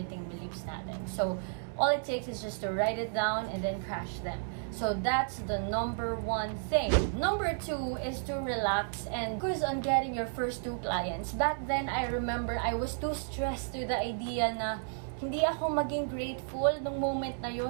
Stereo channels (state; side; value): silent; left; digital silence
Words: beliefs natin. So, all it takes is just to write it down and then crash them. So, that's the number one thing. Number two is to relax and focus on getting your first 2 clients. Back then, I remember I was too stressed to the idea na hindi ako maging grateful nung moment na